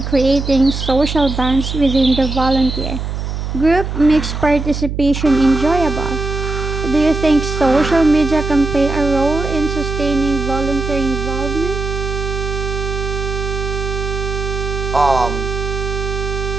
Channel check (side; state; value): right; noise; hum, 4 dB below the sound